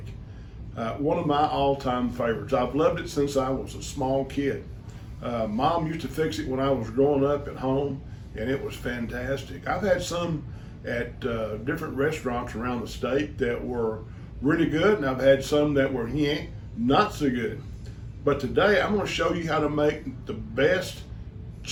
One of my all-time favorites. I've loved it since I was a small kid. Mom used to fix it when I was growing up at home, and it was fantastic. I've had some at different restaurants around the state that were really good, and I've had some that were not so good. But today I'm going to show you how to make the best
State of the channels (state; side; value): identical; both; correlation 1.00